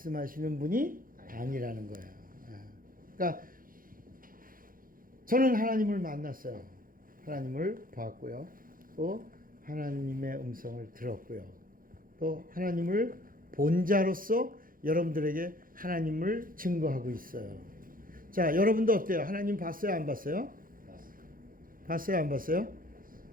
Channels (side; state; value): left; late; 0.41 ms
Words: 분이 아니라는 거예요. 그러니까 저는 하나님을 만났어요. 하나님을 보았고요. 또 하나님의 음성을 들었고요. 또 하나님을 본 자로서 여러분들에게 하나님을 증거하고 있어요. 자, 여러분도 어때요? 하나님 봤어요? 안 봤어요? 봤어요? 안 봤어요?